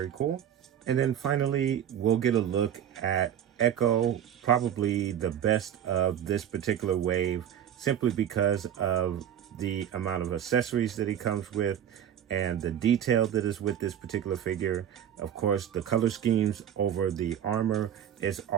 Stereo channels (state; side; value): quieter; left; 9.9 dB